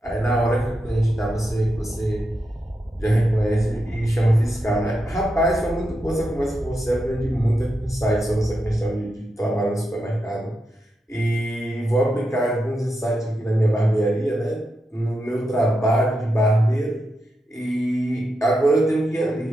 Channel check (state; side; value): normal; both; correlation 0.86